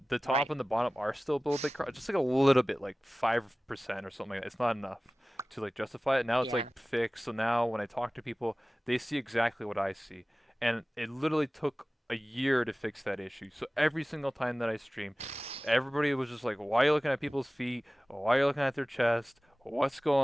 top Right. and the bottom are still a little bit, just like a little bit, like 5% or something like that. It's not enough to like justify it. Now it's Yeah. like fixed. So now when I talk to people, they see exactly what I see, and it literally took a year to fix that issue. So every single time that I stream, everybody was just like, "Why are you looking at people's feet? Why are you looking at their chest? What's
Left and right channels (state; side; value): normal; both; correlation 0.97